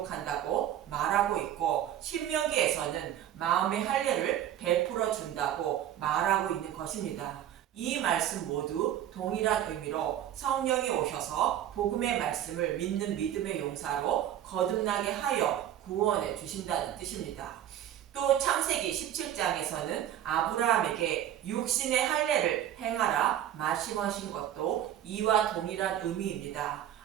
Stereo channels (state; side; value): quieter; left; 11.2 dB